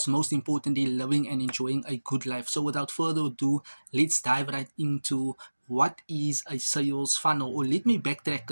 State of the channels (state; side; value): inverted; both; correlation -1.00